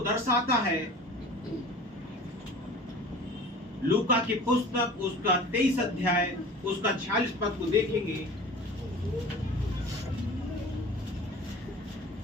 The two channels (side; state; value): both; normal; correlation 0.41